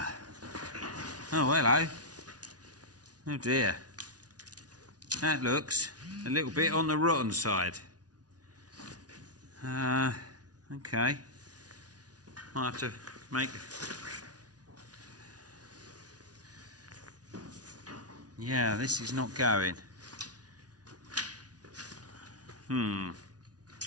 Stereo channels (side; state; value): left; late; 0.69 ms